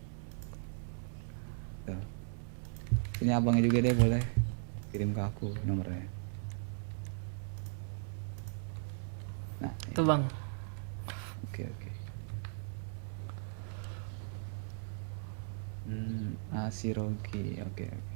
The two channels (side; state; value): left; silent; 53 dB below the other